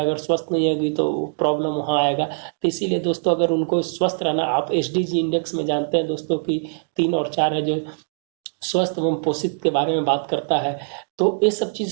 अगर स्वस्थ नहीं होगी तो प्रॉब्लम वहाँ आएगा। तो इसीलिए दोस्तों, अगर उनको स्वस्थ रहना, आप एसडीजी इंडेक्स में जानते हैं दोस्तों कि 3 और 4 है जो स्वस्थ एवं पोषित के बारे में बात करता है, तो ये सब चीज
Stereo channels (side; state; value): left; silent; digital silence